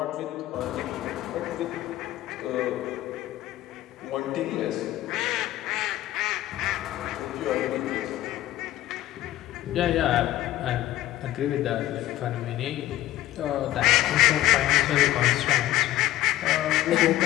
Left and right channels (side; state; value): right; quieter; 14.8 dB